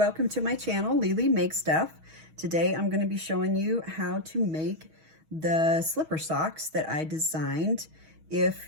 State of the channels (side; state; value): left; late; 6.3 ms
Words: to my channel, Lily Makes Stuff. Today I'm going to be showing you how to make the slipper socks that I designed. If